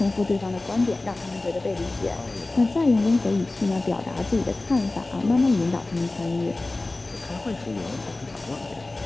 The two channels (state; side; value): quieter; right; 3.0 dB